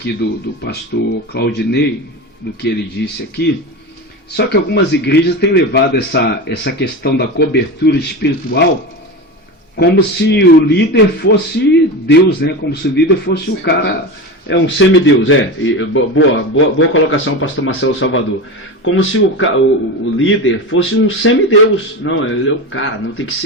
do pastor Claudinei, do que ele disse aqui, só que algumas igrejas têm levado essa questão da cobertura espiritual como se o líder fosse Deus, né? Como se o líder fosse o cara, um semideus, boa colocação, pastor Marcelo Salvador. Como se o líder fosse um semideus. Não, ele é o cara, não tem que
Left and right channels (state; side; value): normal; both; correlation 0.23